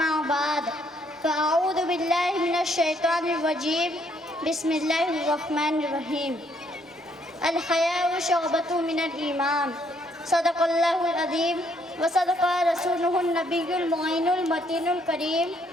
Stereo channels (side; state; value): both; normal; correlation 0.69